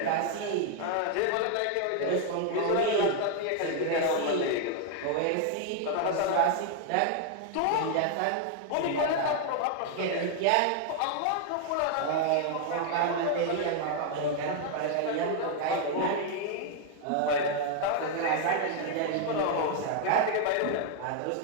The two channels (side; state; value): both; different; correlation 0.00